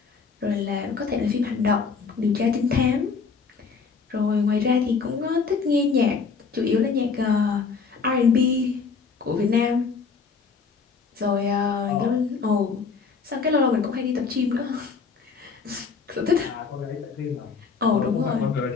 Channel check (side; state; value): right; quieter; 5.2 dB